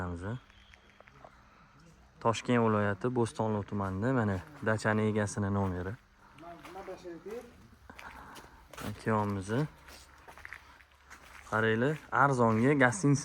Toshkent viloyati Bo'stonliq tumanida mana dachani egasini nomeri. Akamiz. Qaranglar, arzonga,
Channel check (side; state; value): both; identical; correlation 1.00